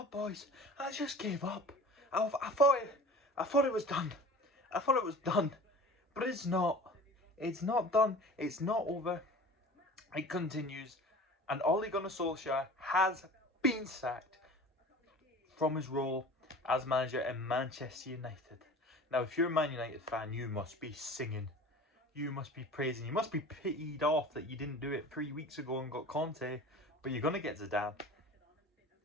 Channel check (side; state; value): both; normal; correlation 0.41